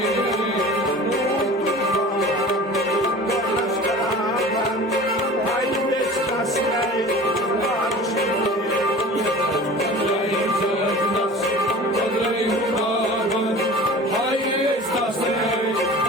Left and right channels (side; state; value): both; normal; correlation 0.40